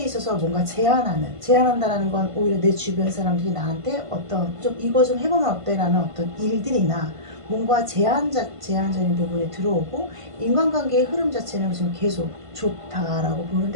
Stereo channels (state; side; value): late; left; 1.5 ms